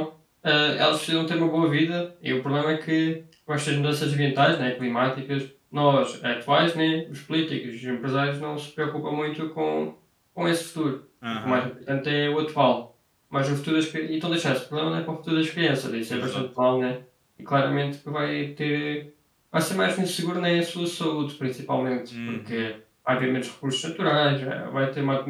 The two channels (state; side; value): identical; both; correlation 1.00